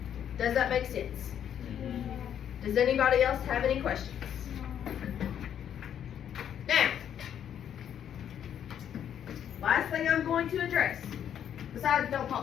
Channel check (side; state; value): right; quieter; 9.4 dB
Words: Does that make sense? Does anybody else have any questions? Now, last thing I'm going to address, besides don't